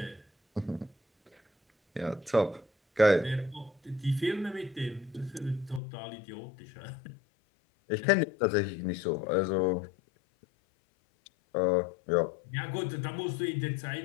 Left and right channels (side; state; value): right; drops out; at 5.8 s